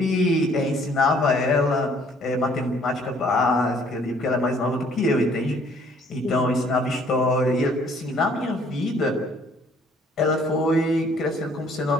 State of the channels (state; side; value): normal; both; correlation 0.60